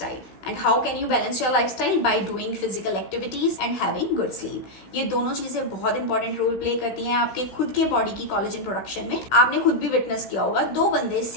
And how can you balance your lifestyle? By doing physical activities and having good sleep. ये दोनों चीजें बहुत इंपॉर्टेंट रोल प्ले करती हैं आपके खुद के बॉडी की कोलेजन प्रोडक्शन में। आपने खुद भी विटनेस किया होगा, 2 बंदे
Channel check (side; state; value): right; late; 16 ms